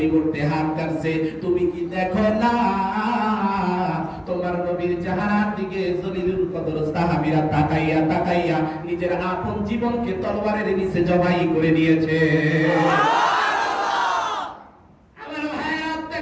হাত কাটছে, তুমি কি দেখো না তোমার নবীর চেহারার দিকে জলিলুল কদর সাহাবীরা তাকাইয়া নিজের আপন জীবনকে তরবারের নিচে জবাই করে দিয়েছে। আমার ভাইয়া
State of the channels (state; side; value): identical; both; correlation 1.00